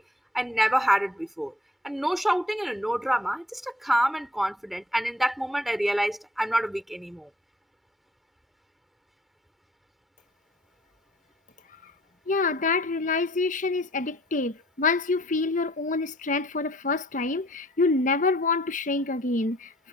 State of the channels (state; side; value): normal; both; correlation 0.57